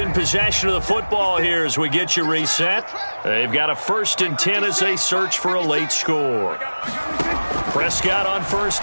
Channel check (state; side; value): inverted; both; correlation -1.00